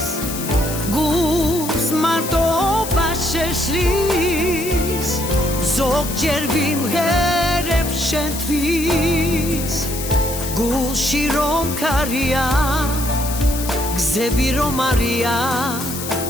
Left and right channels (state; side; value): noise; left; hiss, 8 dB below the sound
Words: გულს მარტობა შეშლის, ზოგჯერ ვიმღერებ შენთვის, გულში რომ ქარია, გზები რომ არია,